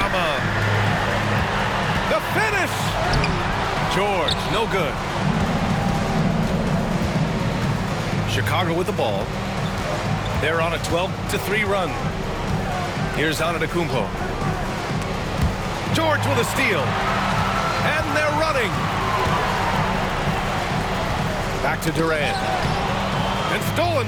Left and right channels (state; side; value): identical; both; correlation 1.00